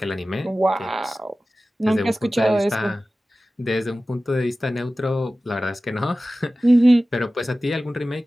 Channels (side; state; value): both; normal; correlation 0.96